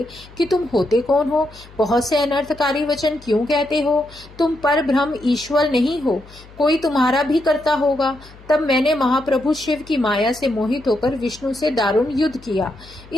कि तुम होते कौन हो? बहुत से अनर्थकारी वचन क्यों कहते हो? तुम पर ब्रह्म ईश्वर नहीं हो, कोई तुम्हारा भी करता होगा। तब मैंने महाप्रभु शिव की माया से मोहित होकर विष्णु से दारुण युद्ध किया।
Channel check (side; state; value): left; noise; hum, 22 dB below the sound